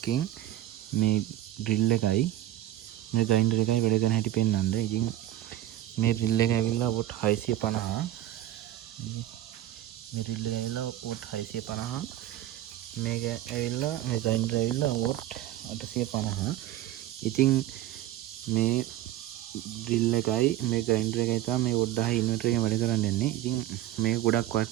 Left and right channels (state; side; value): quieter; left; 13.7 dB